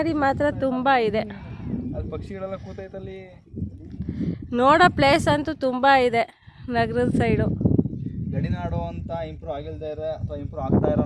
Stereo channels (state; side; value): identical; both; correlation 1.00